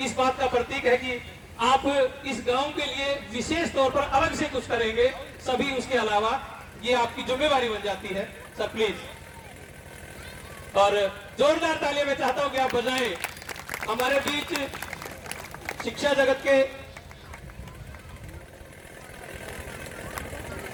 इस बात का प्रतीक है कि आप इस गांव के लिए विशेष तौर पर अलग से कुछ करेंगे, सभी उसके अलावा ये आपकी जिम्मेवारी बन जाती है, सर प्लीज। और जोरदार तालियां मैं चाहता हूं कि आप बजाएं। हमारे बीच शिक्षा जगत के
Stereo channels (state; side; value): identical; both; correlation 1.00